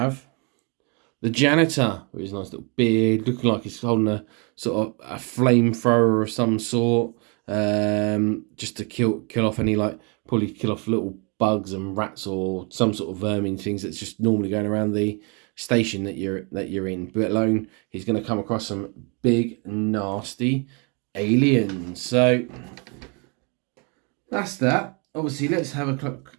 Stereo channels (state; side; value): quieter; left; 33.6 dB